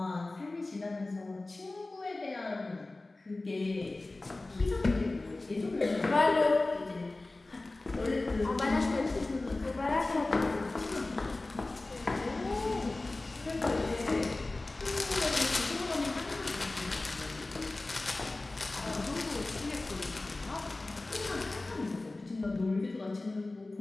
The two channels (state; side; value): quieter; right; 3.0 dB